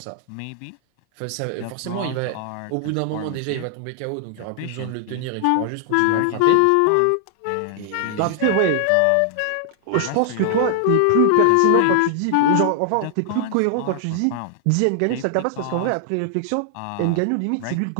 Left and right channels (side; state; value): both; different; correlation 0.00